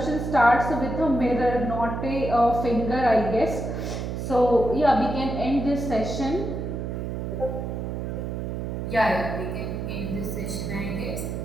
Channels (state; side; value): noise; right; hum, 4 dB below the sound